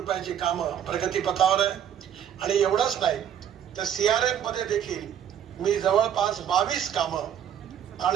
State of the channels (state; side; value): quieter; left; 9.4 dB